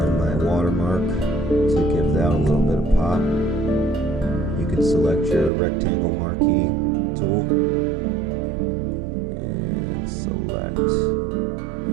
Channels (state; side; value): drops out; left; at 5.5 s